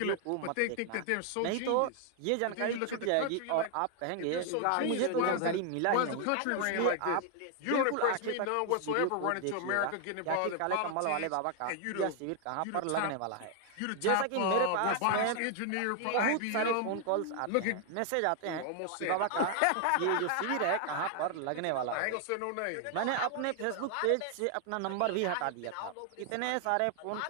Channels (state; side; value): different; both; correlation 0.00